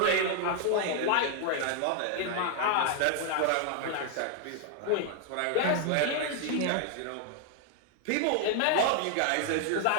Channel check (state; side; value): different; both; correlation 0.00